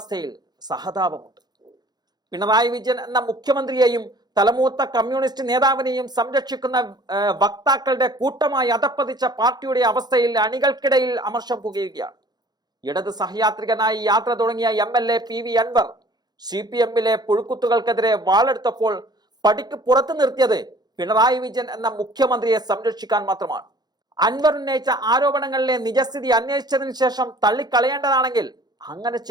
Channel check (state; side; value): late; left; 0.20 ms